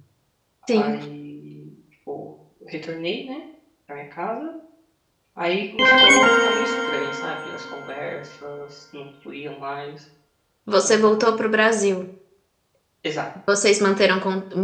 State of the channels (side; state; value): both; identical; correlation 1.00